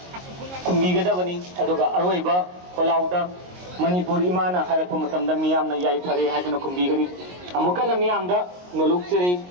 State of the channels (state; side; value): late; left; 22 ms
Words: kumbigada bani aduga aroiba kolauda manipur imana hai pa matamda miyamna yai phare haiduna kumbigani amukana miyamda nolukcheri